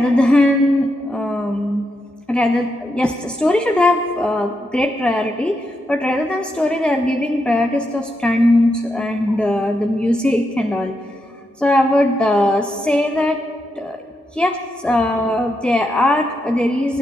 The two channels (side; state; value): both; normal; correlation 0.83